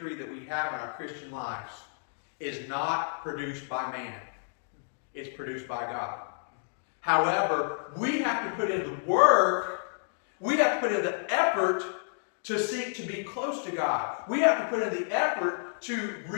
that we have in our Christian lives is not produced by man. It's produced by God. However, we have to put in the work, we have to put in the effort to seek to be close to God. We have to put in the effort to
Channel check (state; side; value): silent; right; digital silence